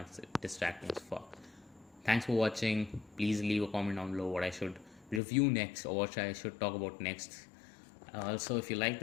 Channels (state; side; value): drops out; right; at 5.2 s